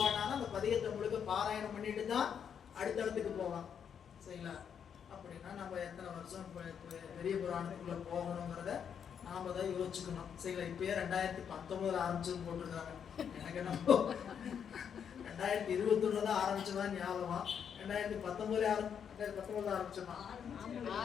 அந்த பதிகத்தை முழுக்க பாராயணம் பண்ணிட்டு தான் அடுத்த இடத்துக்கு போவான். சரிங்களா? அப்படின்னா நம்ம எத்தனை வருஷம் பெரிய புராணத்துக்குள்ள போகணுங்கிறத நாம தான் யோசிச்சுக்கணும். சரிங்களா? இப்பயே 2019 ஆரம்பிச்சுன்னு போட்டிருக்காங்க. எனக்கு என்ன 2021 தான் ஆரம்பிச்சதான் ஞாபகம். 2019 ஆரம்பிச்சோமா?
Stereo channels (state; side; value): quieter; right; 7.8 dB